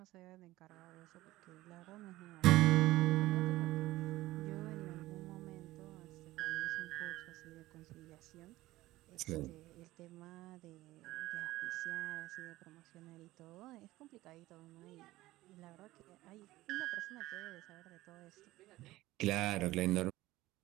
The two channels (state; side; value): quieter; left; 17.4 dB